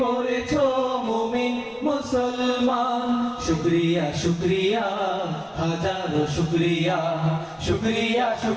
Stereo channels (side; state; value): both; identical; correlation 1.00